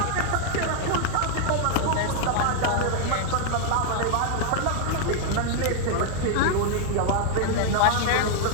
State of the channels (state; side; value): different; both; correlation 0.00